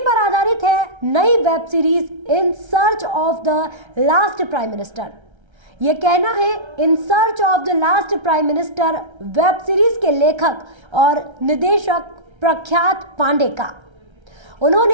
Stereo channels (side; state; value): left; late; 1.3 ms